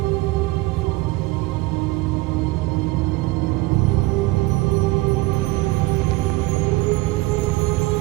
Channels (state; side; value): quieter; left; 20.9 dB